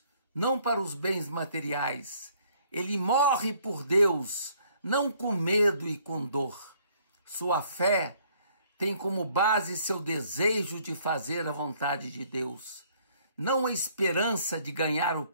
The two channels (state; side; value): inverted; both; correlation -0.63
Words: não para os bens materiais. Ele morre por Deus, não com medo e com dor. Sua fé tem como base seu desejo de fazer a vontade de Deus, não a esperança de ganhar o